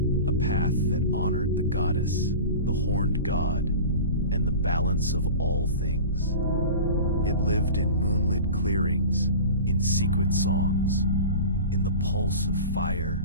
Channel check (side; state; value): both; inverted; correlation -0.35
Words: a path that honored the goddess, the horned god, and the balance of all things. It lived in moonlit clearings, in secret songs, in the pulse of